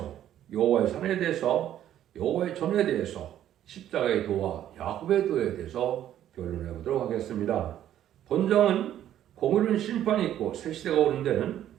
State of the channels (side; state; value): left; quieter; 11.4 dB